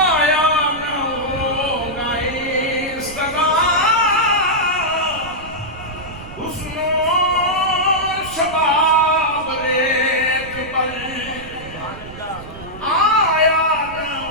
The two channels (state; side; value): noise; right; rumble, 16 dB below the sound